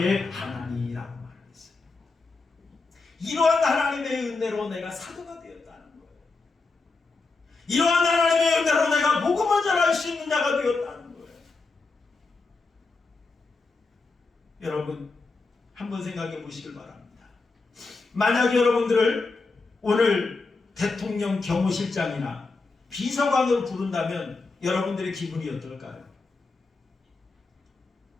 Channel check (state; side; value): quieter; right; 3.9 dB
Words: 하나니라고 말했어요. 이러한 하나님의 은혜로 내가 사도가 되었다는 거예요. 이러한 하나님의 은혜로 내가 복음을 전할 수 있는 자가 되었다는 거예요. 여러분 한번 생각해 보시길 바랍니다. 만약 여러분들을 오늘 대통령 경호실장이나 비서관으로 부른다면 여러분들의 기분이 어떨까요?